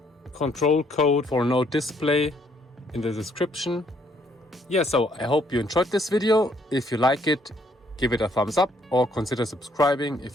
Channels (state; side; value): normal; both; correlation 0.67